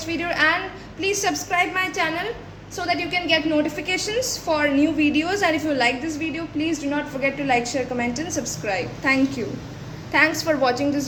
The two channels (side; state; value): both; identical; correlation 1.00